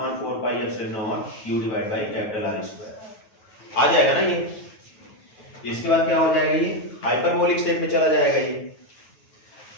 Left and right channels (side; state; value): right; late; 9.3 ms